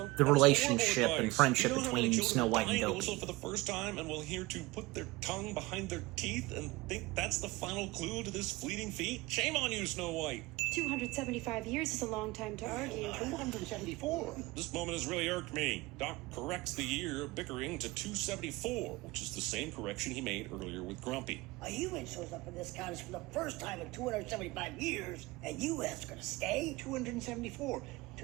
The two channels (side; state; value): left; quieter; 21.6 dB